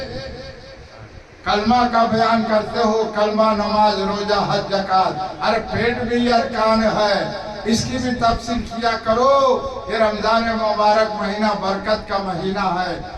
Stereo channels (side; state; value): both; identical; correlation 1.00